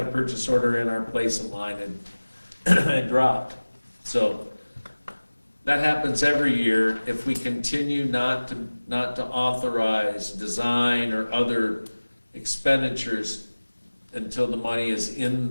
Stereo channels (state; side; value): inverted; both; correlation -1.00